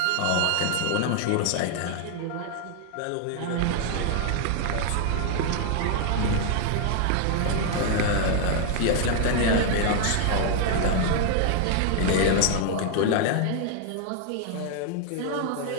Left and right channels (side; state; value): both; different; correlation 0.00